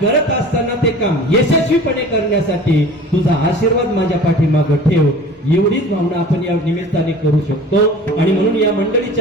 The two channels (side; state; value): both; normal; correlation 0.42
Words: असताना ते काम यशस्वीपणे करण्यासाठी तुझा आशीर्वाद माझ्या पाठीमागं ठेव, एवढीच भावना आपण या निमित्ताने करू शकतो. आणि म्हणून या